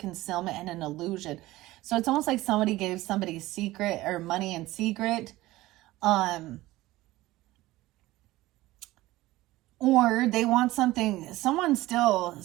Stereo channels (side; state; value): left; quieter; 17.7 dB